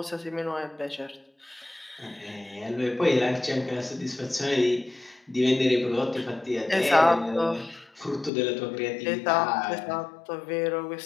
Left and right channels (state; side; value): drops out; right; at 8.3 s